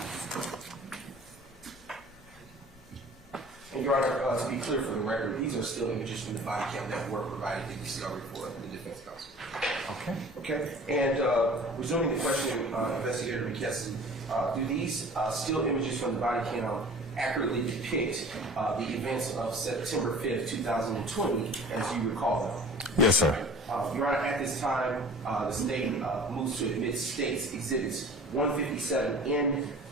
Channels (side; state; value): both; normal; correlation 0.44